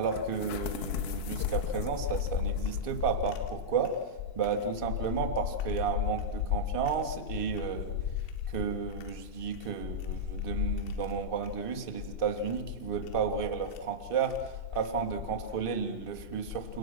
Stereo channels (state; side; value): late; right; 2.6 ms